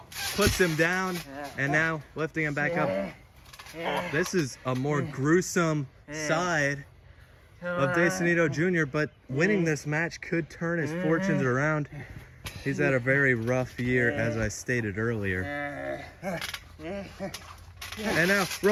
puts him down, and now lifting him back up. This is a more gruesome side of Sonido Jr., but winning this match could turn his fortunes around. He's had a very rough year, as I stated earlier. And now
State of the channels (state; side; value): identical; both; correlation 1.00